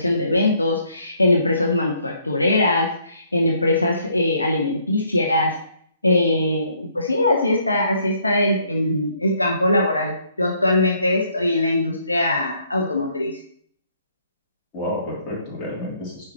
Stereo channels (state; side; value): inverted; both; correlation -0.67